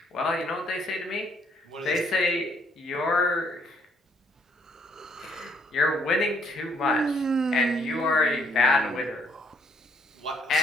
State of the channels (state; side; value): normal; both; correlation 0.67